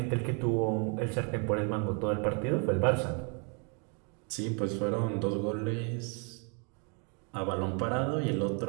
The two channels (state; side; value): quieter; left; 36.7 dB